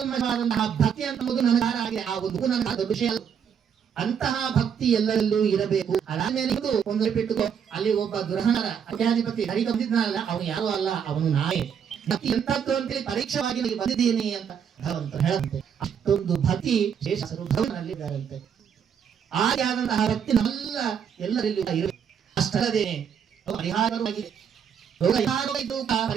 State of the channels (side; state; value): left; quieter; 7.7 dB